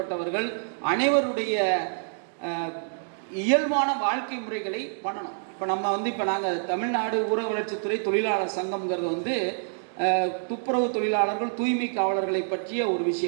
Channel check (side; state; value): left; silent; digital silence